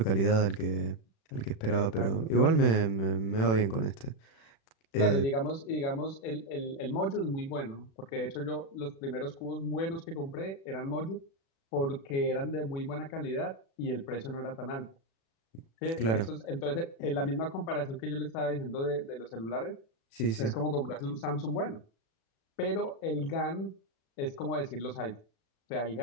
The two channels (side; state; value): right; late; 36 ms